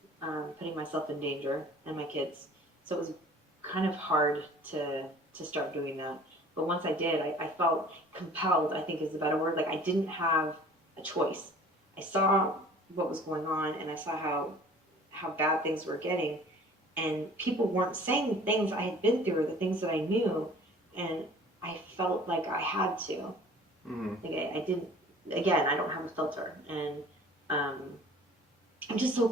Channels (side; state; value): both; normal; correlation 0.48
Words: putting myself in danger and my kids. So it was kind of hard to start doing that. But once I did, I felt compelled, I think is the better word. Like I didn't have a choice. I saw what was going on, and I saw how bad things were getting. And people weren't saying the things I had been through or the things that I knew. And I felt like I had to. Mm-hmm. Like I didn't, again, I don't have a filter. And I'm just so